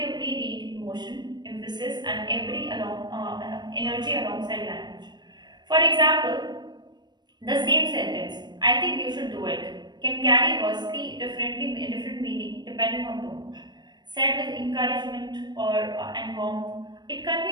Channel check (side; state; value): left; late; 0.21 ms